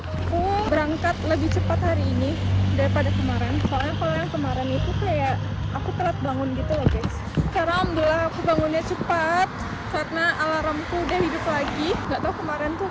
aku berangkat lebih cepat hari ini daripada kemarin. Soalnya kalau yang kemarin itu kayak aku telat bangun gitu loh guys. Sekarang alhamdulillah aku bangunnya cepat karena alarmku udah hidup lagi. Nggak tahu kemarin tuh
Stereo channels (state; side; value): identical; both; correlation 1.00